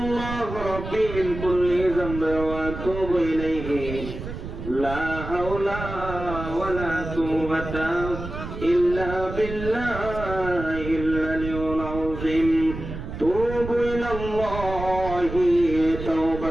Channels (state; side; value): noise; right; rumble, 8 dB below the sound